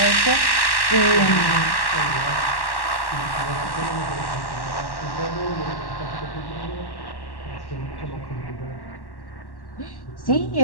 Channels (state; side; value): late; right; 1.1 ms